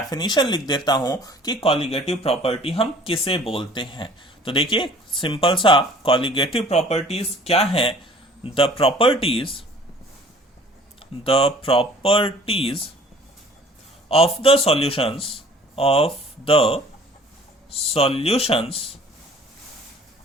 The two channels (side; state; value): both; normal; correlation 0.51